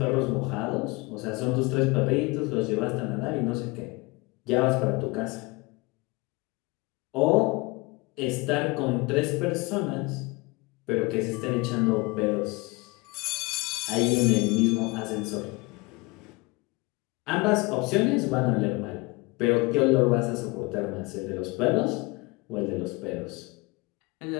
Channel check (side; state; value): right; quieter; 25.2 dB